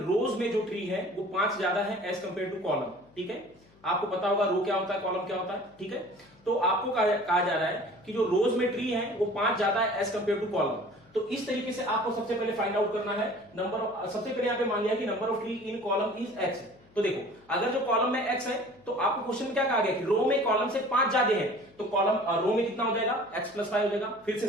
में जो ट्री है वो 5 ज्यादा है एज कंपेयर टू कॉलम। ठीक है, आपको पता होगा रो क्या होता है, कॉलम क्या होता है। ठीक है, तो आपको कहा जा रहा है कि जो रोज में ट्री है वो 5 ज्यादा है एज कंपेयर टू कॉलम। तो इस तरीके से आपको सबसे पहले फाइंड आउट करना है नंबर ऑफ, सबसे पहले यहां पे मान लिया कि number of tree in column is x। तो देखो अगर जो कॉलम में x है तो आपको क्वेश्चन में क्या कहा गया कि रो में कॉलम से 5 ज्यादा है, तो कॉलम रो में कितना हो जाएगा, x प्लस 5 हो जाएगा। फिर से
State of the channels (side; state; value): left; noise; hum, 29 dB below the sound